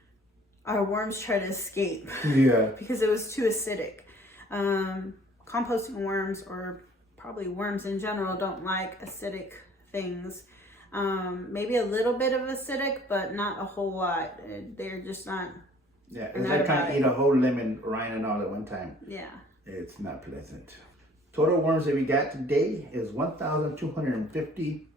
our worms try to escape. Yeah. Because it was too acidic. Composting worms, or probably worms in general, don't like acidic things. Maybe a little bit of acidic, but not a whole lot. They're just not. Yeah, it's like trying to eat a whole lemon, rind and all at one time. Yeah. It's not pleasant. Total worms that we got today is 1,250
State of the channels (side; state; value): both; normal; correlation 0.55